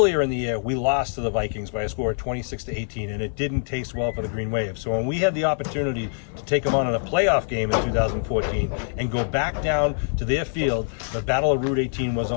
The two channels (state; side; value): silent; right; 58 dB below the other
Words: in the year, we lost to the Vikings by a score of 26-18, and it didn't taste well for the Green Wave. So when we had the opportunity to take them on in a playoff game in 2014 and go back down to their field, the Battle of Route 18 was